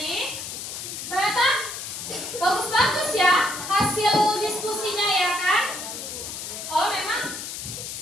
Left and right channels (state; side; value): noise; left; hiss, 7 dB below the sound